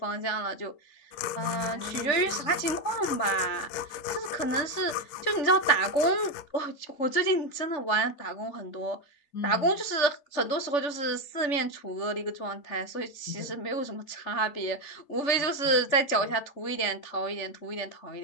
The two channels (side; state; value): right; late; 3.4 ms